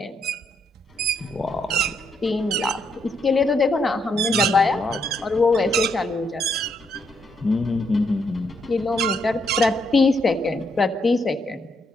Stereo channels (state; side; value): normal; both; correlation 0.76